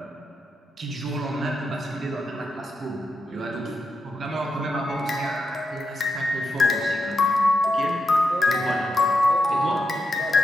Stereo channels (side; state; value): both; normal; correlation 0.85